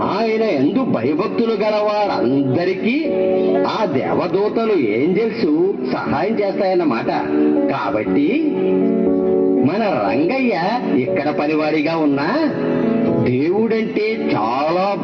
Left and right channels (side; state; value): both; identical; correlation 1.00